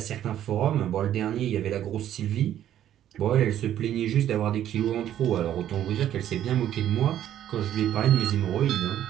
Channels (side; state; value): left; quieter; 11.3 dB